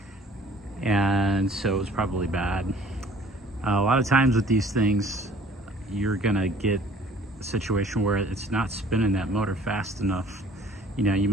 and so it was probably bad. A lot of times with these things, you're gonna get a situation where it's not spinning that motor fast enough. You know, you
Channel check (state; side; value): normal; both; correlation 0.53